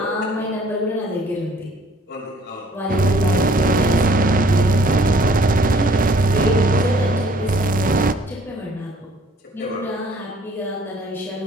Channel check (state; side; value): normal; both; correlation 0.58